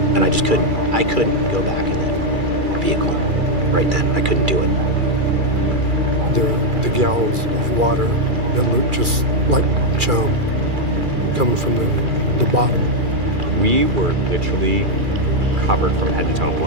And I couldn't go back in that vehicle right then. I couldn't do it. The gallons of water that looked just like chum coming from the bottom. We were literally covered from head to toe in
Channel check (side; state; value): left; late; 2.4 ms